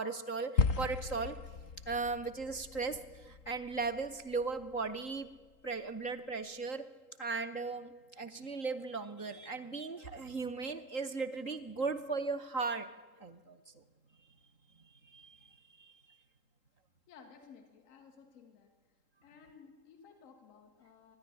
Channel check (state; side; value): late; right; 3.8 ms